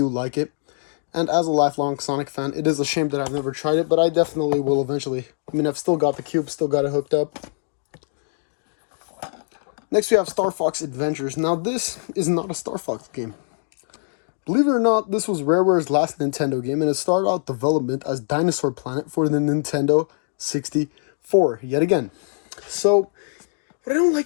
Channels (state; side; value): silent; right; digital silence